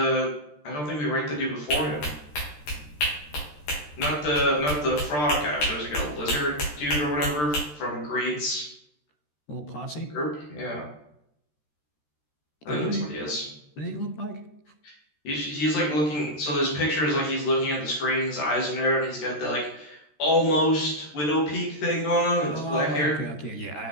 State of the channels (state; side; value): late; right; 13 ms